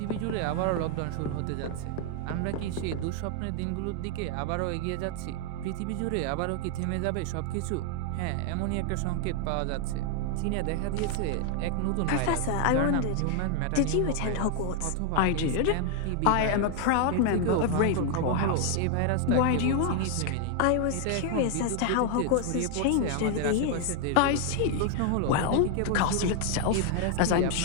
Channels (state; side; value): different; both; correlation 0.00